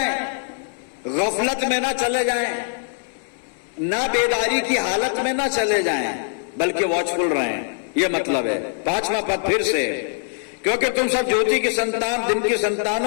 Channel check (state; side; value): silent; right; 64 dB below the other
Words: गफलत में ना चले जाएं, ना बेदारी की हालत में ना चले जाएं, बल्कि वॉचफुल रहें। यह मतलब है। 5वां पद फिर से, क्योंकि तुम सब ज्योति की संतान, दिन की संतान